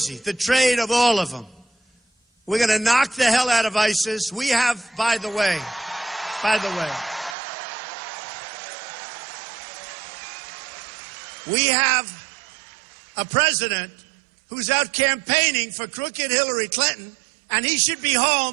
The trade of all of them. We're going to knock the hell out of ISIS. We have, by the way, we have a president who's out campaigning for crooked Hillary Clinton, and he should be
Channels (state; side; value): drops out; left; at 7.4 s